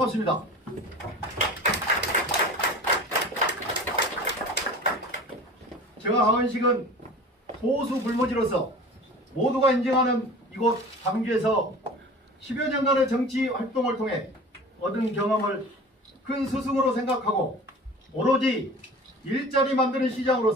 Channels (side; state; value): both; normal; correlation 0.39